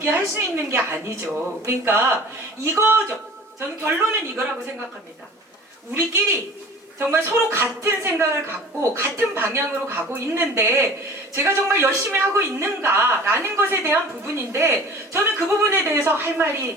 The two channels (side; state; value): both; normal; correlation 0.43